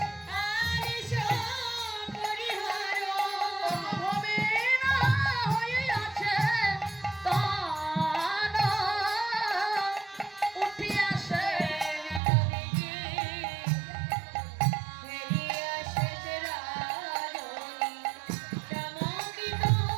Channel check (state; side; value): drops out; left; at 12.2 s